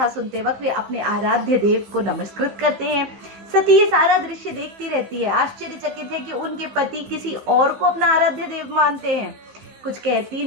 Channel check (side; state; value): left; late; 15 ms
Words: सुनते वक्त वे अपने आराध्य देव को नमस्कृत करते हैं। सती ये सारा दृश्य देखती रहती है, आश्चर्यचकित है कि उनके पति किसी और को अपना आराध्य देव मानते हैं। कुछ कहती